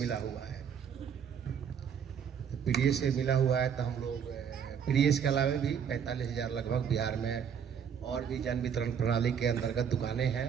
हुआ है। तो पीडीएस से मिला हुआ है तो हम लोग पीडीएस के अलावा भी 45,000 लगभग बिहार में और भी जन वितरण प्रणाली के अंतर्गत दुकानें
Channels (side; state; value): left; quieter; 7.6 dB